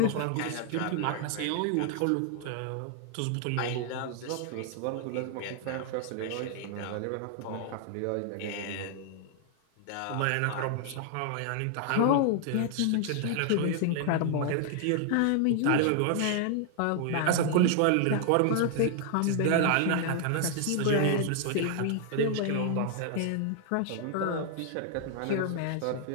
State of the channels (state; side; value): different; both; correlation 0.00